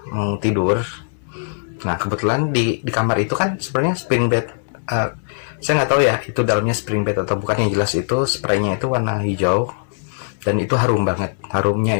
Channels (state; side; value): silent; right; 66 dB below the other